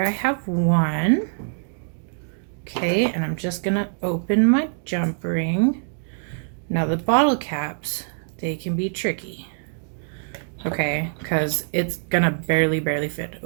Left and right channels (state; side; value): silent; left; digital silence